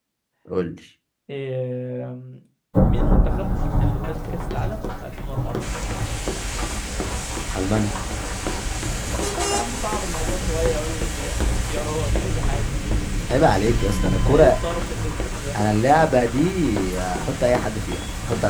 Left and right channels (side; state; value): both; identical; correlation 1.00